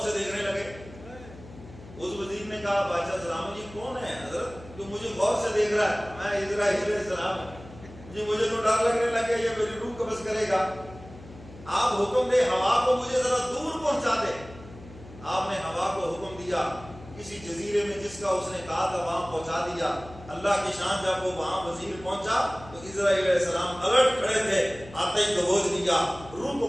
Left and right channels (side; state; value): left; noise; hum, 18 dB below the sound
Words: سے دیکھنے لگے۔ اس وزیر نے کہا بادشاہ سلام جی کون ہے حضرت جو مجھے غور سے دیکھ رہا ہے؟ میں اسرائیل علیہ السلام جی، مجھے تو ڈر لگنے لگا یہ میری روح قبض کرے گا، آپ حکم دے ہوا کو مجھے ذرا دور پہنچا دے۔ آپ نے ہوا کو حکم دیا، کسی جزیرے میں جس کا اس نے کہا تھا وہاں پہنچا دیا۔ اللہ کی شان، جب وہ وہاں وزیر پہنچا تو اسرائیل علیہ السلام الرٹ کھڑے تھے، آتے ہی دبوچ لیا، روح کو